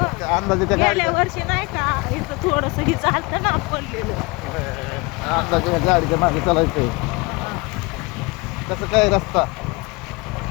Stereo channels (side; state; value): right; quieter; 25.7 dB